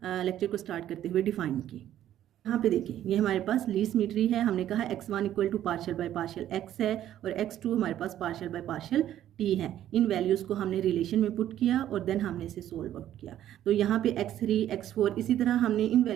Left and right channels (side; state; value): left; quieter; 11.8 dB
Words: लेक्चर को स्टार्ट करते हुए डिफाइन की। यहाँ पे देखिए ये हमारे पास ली सिमेट्री है। हमने कहा x1 equal to partial by partial x है और x2 हमारे पास पार्शियल बाय पार्शियल t है। इन वैल्यूज़ को हमने रिलेशन में पुट किया और देन हमने इसे सोल्व आउट किया। तो यहाँ पे x3 x4 इसी तरह हमने इन